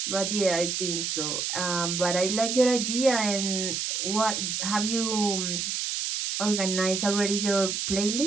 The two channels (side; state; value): right; noise; hiss, 1 dB below the sound